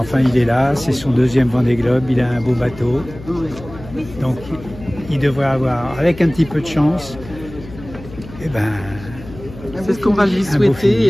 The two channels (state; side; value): noise; left; hum, 16 dB below the sound